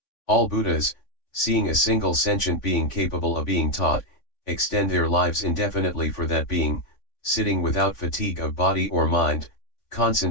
All Buddhas, seeing a single sentient being capable of being taught, extend their lives indefinitely for that being, sitting without fatigue of body or mind,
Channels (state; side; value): late; right; 3.5 ms